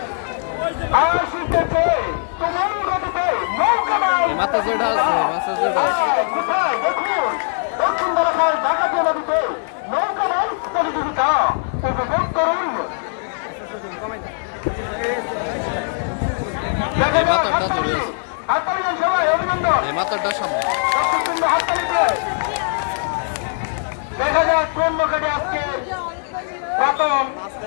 আসিতেছে তোমার গতিতে নৌকা বাইচ এই মাথা যেটা আছে, মাথা যেটা আছে। কোথায় দেখুন দক্ষিণ বারাখাল ডাকাতিয়া নদীতে নৌকা বাইচ প্রতিযোগিতা উপভোগ করুন। এই মাথাটা দূরে আছে, হাততালির সবাই অভিনন্দন। এই মাথাটা সামনে। দর্শকবৃন্দ হাততালি দিয়ে দেখা যাক কোন নৌকাটি আজকে প্রথম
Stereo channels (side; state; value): right; silent; digital silence